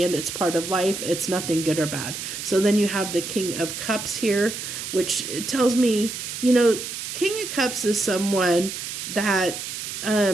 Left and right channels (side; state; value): right; noise; hiss, 7 dB below the sound